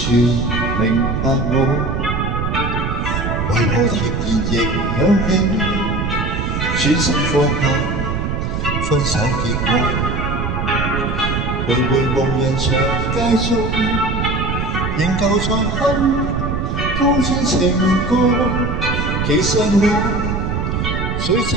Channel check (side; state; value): right; noise; rumble, 1 dB below the sound